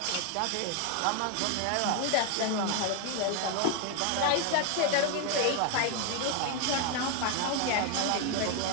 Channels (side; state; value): both; different; correlation 0.01